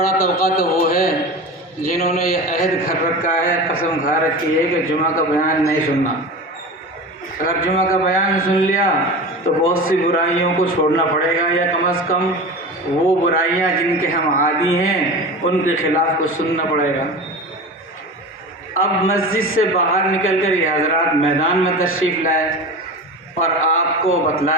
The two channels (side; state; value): both; normal; correlation 0.30